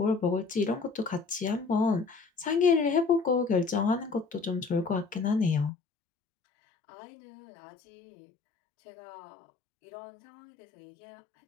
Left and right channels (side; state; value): right; drops out; at 5.7 s